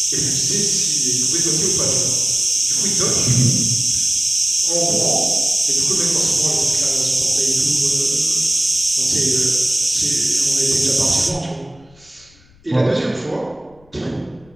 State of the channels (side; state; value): left; noise; rumble, 29 dB below the sound